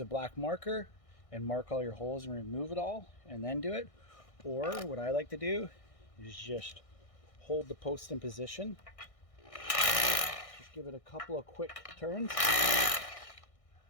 black marker and mark all your holes and remove it all and then do it. Or what I like to do is just hold the post in position. Just give it a couple of quick turns.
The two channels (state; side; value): late; right; 1.6 ms